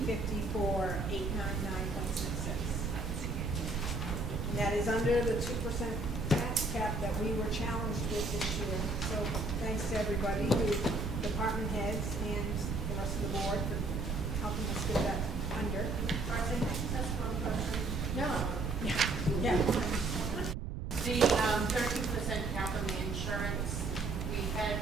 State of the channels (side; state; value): right; noise; rumble, 3 dB below the sound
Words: And that is under the 2% tax cap that we were challenged with this year. So thanks to everybody, department heads and the rest of the board for helping us get that under. No. Yeah. The 13% cap on the insurance, we